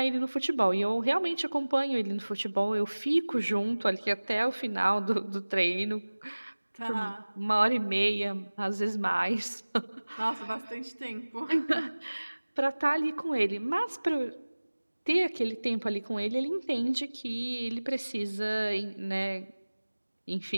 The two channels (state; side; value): inverted; both; correlation -1.00